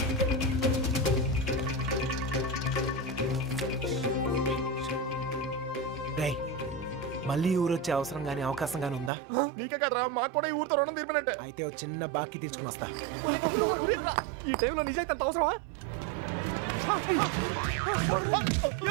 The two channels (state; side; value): drops out; left; at 9.1 s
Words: మళ్ళీ ఊరు వచ్చే అవసరం గానీ అవకాశం గానీ ఉందా? నీకే కదరా, మాకు కూడా ఈ ఊరితో రుణం తీర్పినట్టే. అయితే ఓ చిన్న బాకీ తీసుకుని వస్తా. ఈ టైంలో నిజాయితీ అంత అవసరమా?